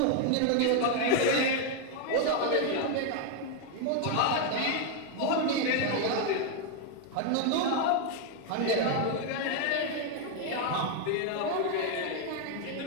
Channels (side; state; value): both; different; correlation 0.01